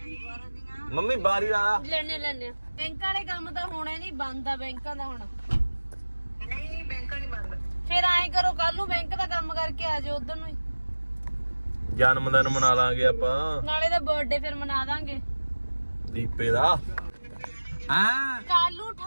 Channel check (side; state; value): both; inverted; correlation -1.00